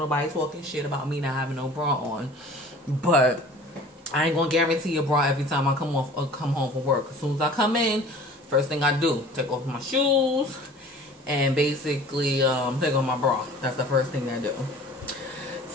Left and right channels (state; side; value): normal; both; correlation 0.45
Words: nobody talking shit about me not having no bra on. But I ain't gonna guarantee a bra every time I come home from work. As soon as I come in, first thing I do, take off my shoes and basically take off my bra. That's the first thing I do.